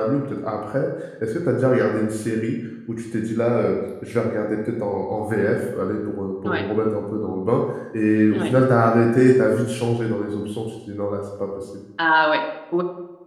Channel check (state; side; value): identical; both; correlation 1.00